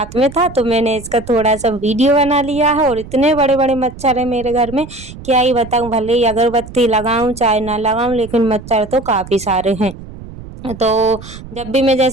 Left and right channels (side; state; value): right; noise; rumble, 15 dB below the sound